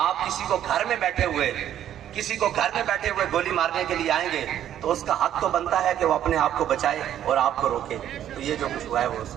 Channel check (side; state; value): left; quieter; 11.0 dB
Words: آپ کسی کو گھر میں بیٹھے ہوئے گولی مارنے کے لیے آئیں گے تو اس کا حق تو بنتا ہے کہ وہ اپنے آپ کو بچائے اور آپ کو روکے۔ تو یہ جو کچھ ہوا ہے وہ